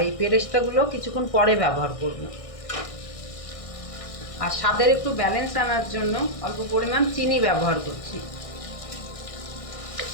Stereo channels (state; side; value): late; right; 1.6 ms